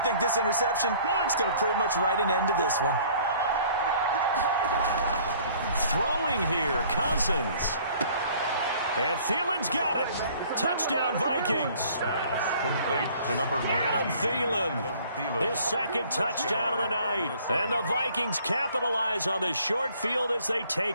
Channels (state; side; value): inverted; both; correlation -0.55